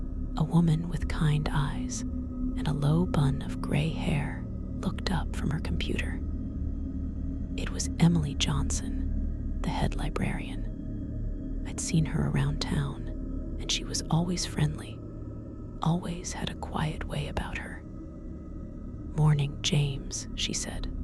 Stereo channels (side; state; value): both; identical; correlation 1.00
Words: A woman with kind eyes and a low bun of gray hair looked up from her computer. It was Emily Johnson, the head librarian. I'd seen her around town, and she was always friendly, always had a quiet way about her. "Morning, James," she said,